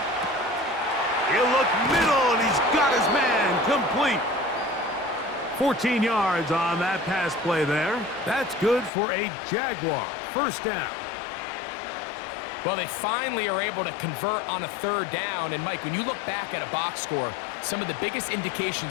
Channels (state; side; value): drops out; right; at 8.9 s